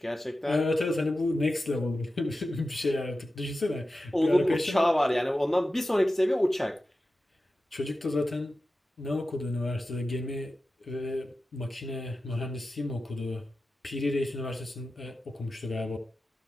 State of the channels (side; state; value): both; normal; correlation 0.93